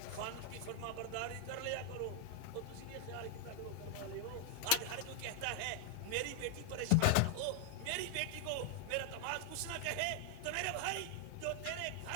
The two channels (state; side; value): different; both; correlation 0.00